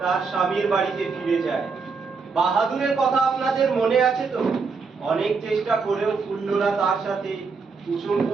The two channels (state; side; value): quieter; left; 4.9 dB